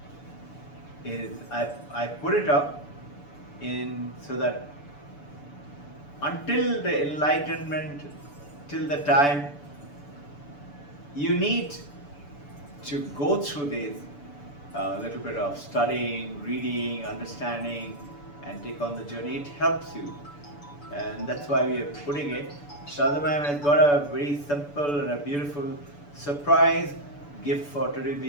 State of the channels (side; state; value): right; late; 6.9 ms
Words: I put it up in so that until the enlightenment, till the time you need to go through this little bit of studying, reading, understanding, and take on the journey. It helps you, and that's why we are putting it. Shraddha Ma'am has got a very simple and a beautiful surprise gift for today